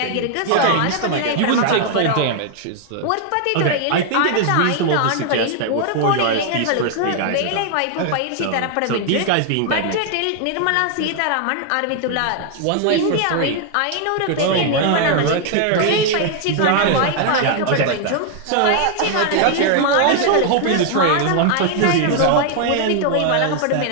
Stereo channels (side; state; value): both; different; correlation 0.00